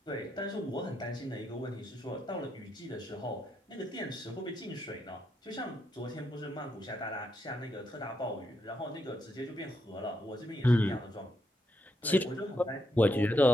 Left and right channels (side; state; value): both; normal; correlation 0.80